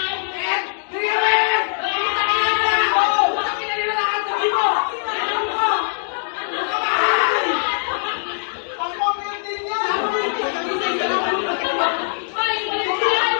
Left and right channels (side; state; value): right; silent; digital silence